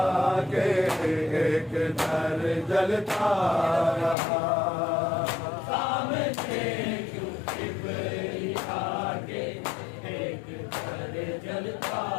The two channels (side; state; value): right; drops out; at 4.2 s